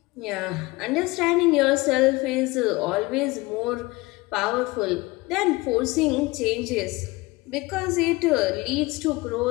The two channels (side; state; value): right; quieter; 22.4 dB